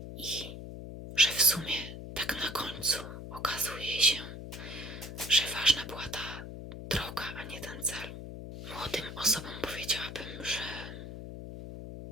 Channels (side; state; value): left; noise; hum, 9 dB below the sound